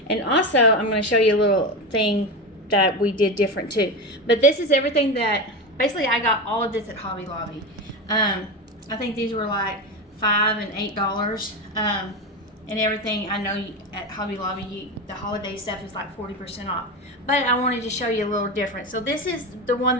And also, I'm going to show you a little thing that we did different too. But this is everything that, basically I got all of this at Hobby Lobby. I think these were like $5 and $8. And everything, I know at Hobby Lobby, the holiday stuff is like 40% off. But I wanted to show you a little different. So this is the one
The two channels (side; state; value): both; normal; correlation 0.19